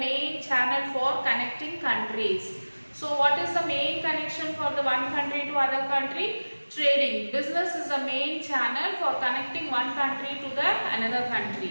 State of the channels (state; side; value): inverted; both; correlation -1.00